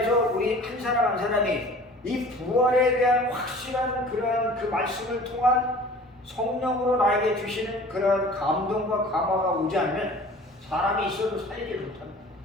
우리 한 사람 한 사람이 이 부활에 대한 확실한 그러한 그 말씀을 통한 성령으로 나에게 주시는 그러한 감동과 감화가 오지 않으면 사람이 있어도 살리지 못합니다.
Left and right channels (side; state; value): both; normal; correlation 0.45